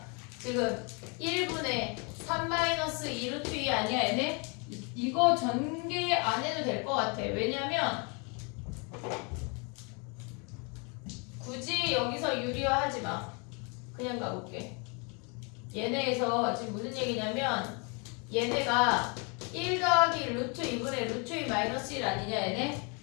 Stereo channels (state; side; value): quieter; right; 33.4 dB